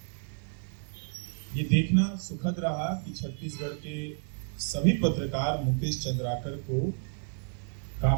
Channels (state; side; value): silent; left; 57 dB below the other